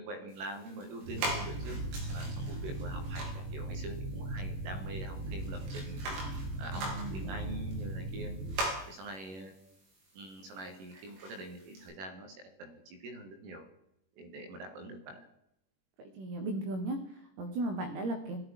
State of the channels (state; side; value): late; left; 21 ms